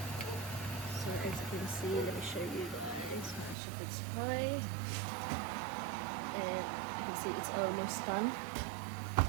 So as you can see, let me show you guys my shepherd's pie. And you can see it's almost done.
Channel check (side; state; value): left; drops out; at 3.6 s